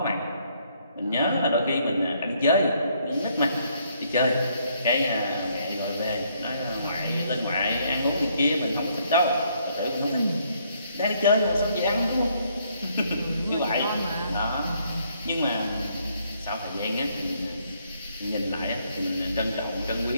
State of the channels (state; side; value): inverted; both; correlation -0.69